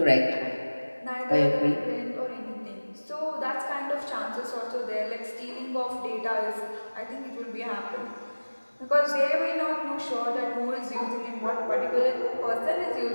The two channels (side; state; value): both; inverted; correlation -1.00